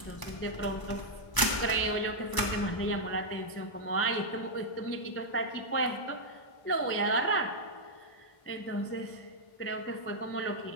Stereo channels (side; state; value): right; late; 1.0 ms